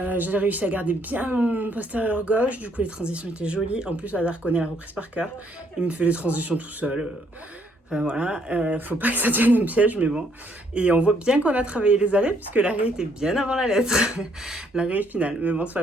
J'ai réussi à garder bien mon postérieur gauche, du coup les transitions étaient jolies. En plus, Hazard connaît la reprise par cœur. Il me fait les transitions tout seul. Enfin voilà, faut pas que ça devienne un piège, mais bon. Et on voit bien qu'on a travaillé les arrêts, puisque l'arrêt était bien avant la lettre. L'arrêt final. Mais bon, c'est pas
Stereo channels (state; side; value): normal; both; correlation 0.69